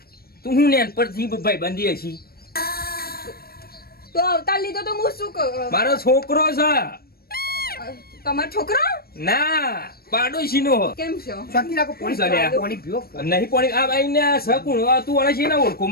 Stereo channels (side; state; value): right; late; 0.44 ms